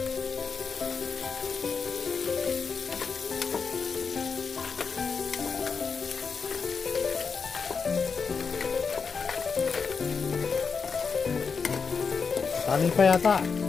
Tali pa yata.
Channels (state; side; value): quieter; right; 5.5 dB